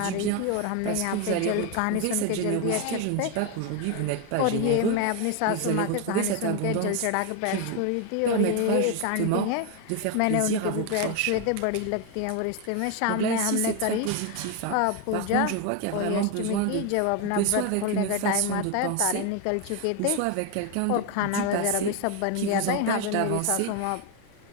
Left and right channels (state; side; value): different; both; correlation 0.01